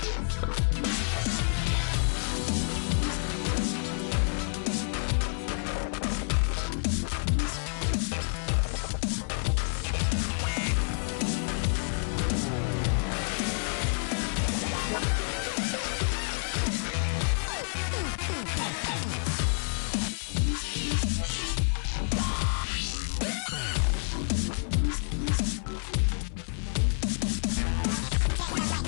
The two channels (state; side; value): silent; right; 59 dB below the other